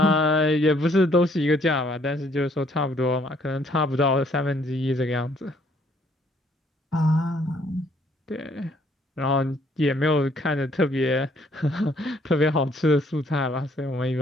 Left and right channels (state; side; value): normal; both; correlation 0.65